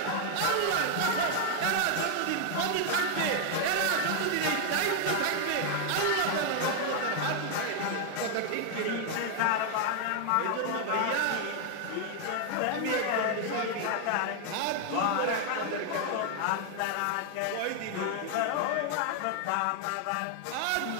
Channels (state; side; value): different; both; correlation 0.00